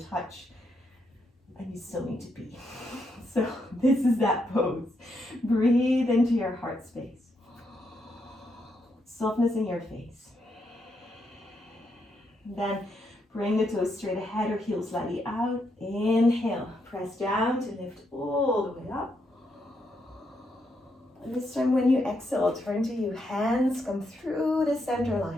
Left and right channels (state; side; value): normal; both; correlation 0.79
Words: touch and you still need to pee. So this is that pose. Breathe into your heart space. Softness in your face. Then bring the toes straight ahead or heels slightly out. Inhale, press down to lift all the way up. And this time when you exhale, turn to you. Hands come through the center